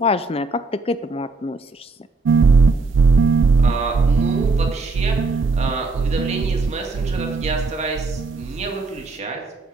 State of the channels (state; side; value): quieter; left; 3.8 dB